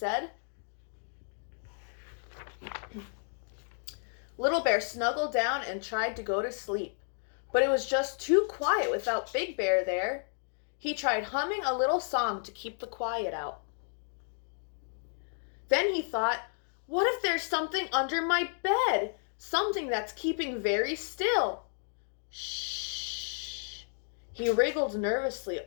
Little Bear snuggled down and tried to go to sleep, but it was just too quiet without Big Bear there. He tried humming a little song to keep the quiet out. Then he thought, what if there's something under my bed? Something that's keeping very still. Shh. He wriggled nervously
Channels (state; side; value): silent; right; digital silence